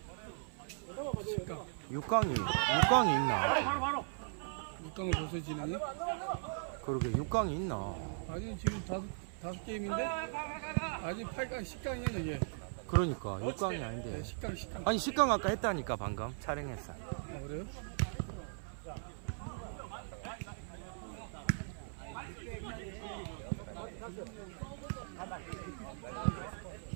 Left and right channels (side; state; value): left; silent; 52 dB below the other